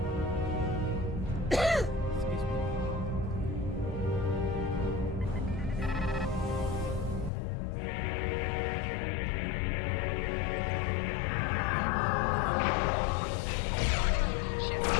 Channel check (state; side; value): drops out; right; at 7.3 s